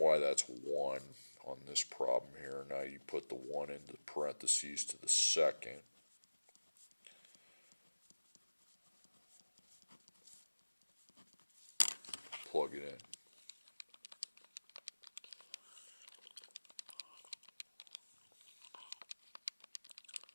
that's 1 on this problem here. Now you put the 1 into parentheses to the second. Plug it in.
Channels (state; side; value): inverted; both; correlation -1.00